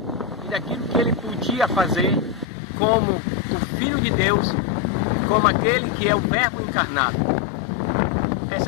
e daquilo que ele podia fazer como o Filho de Deus, como aquele que é o Verbo encarnado.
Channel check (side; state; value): right; drops out; at 2.5 s